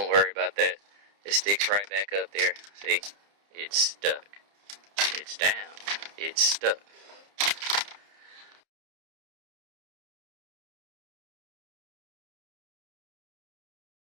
worry about that. It sticks right back up there. See? It's stuck. It's down. It's stuck.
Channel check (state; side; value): late; left; 30 ms